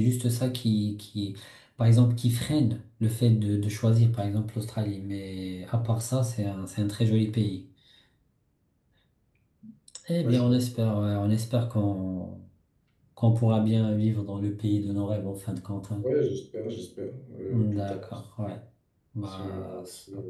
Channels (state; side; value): identical; both; correlation 1.00